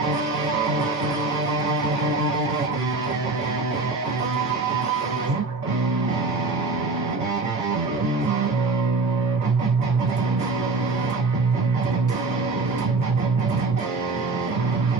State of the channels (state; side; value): quieter; left; 3.6 dB